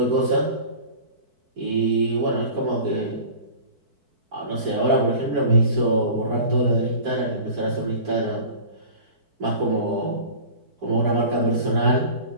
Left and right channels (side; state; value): left; late; 4.5 ms